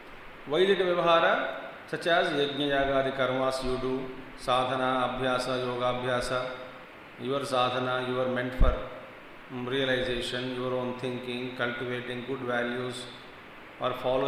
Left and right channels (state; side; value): identical; both; correlation 1.00